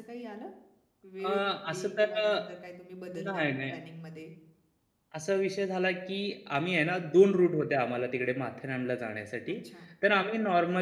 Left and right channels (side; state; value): both; identical; correlation 1.00